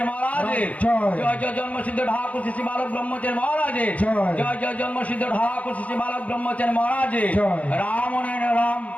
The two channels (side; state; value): right; late; 0.069 ms